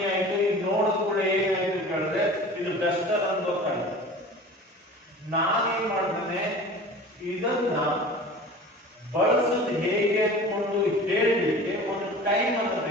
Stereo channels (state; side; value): normal; both; correlation 0.40